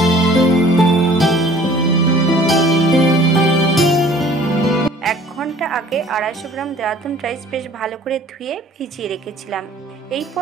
1 ঘন্টা আগে 250 গ্রাম দেরাদুন রাইস বেশ ভালো করে ধুয়ে ভিজিয়ে রেখেছিলাম। এই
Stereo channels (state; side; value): normal; both; correlation 0.51